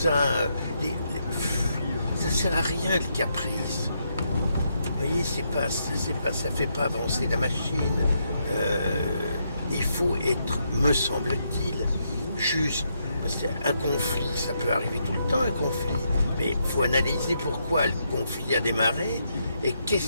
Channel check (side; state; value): both; inverted; correlation -0.78